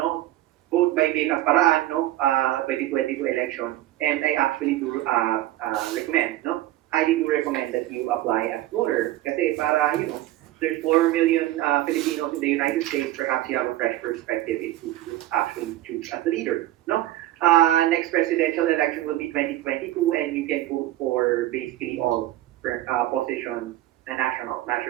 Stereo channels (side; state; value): left; quieter; 15.2 dB